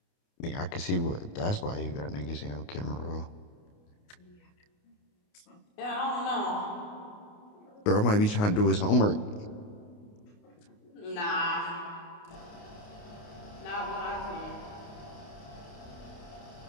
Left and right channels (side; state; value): right; late; 29 ms